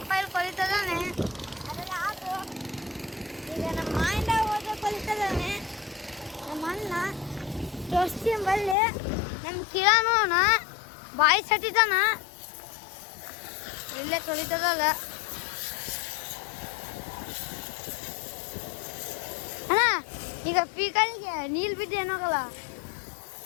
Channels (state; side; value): drops out; right; at 8.8 s